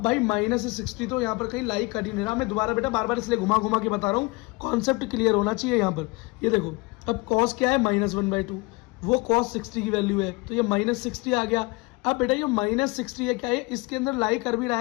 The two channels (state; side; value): quieter; right; 25.5 dB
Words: भाई -60 तो यहाँ पर कहीं लाई कर ही नहीं रहा। मैं दोबारा बेटा बार बार इसलिए घुमा के बता रहा हूँ, कॉन्सेप्ट क्लियर होना चाहिए यहाँ पर। ये देखो अब cos क्या है -1/2, वो cos 60 की वैल्यू है, तो ये -60 आ गया। अब बेटा ये -60 है क्या है, इसके अंदर लाई कर भी रहा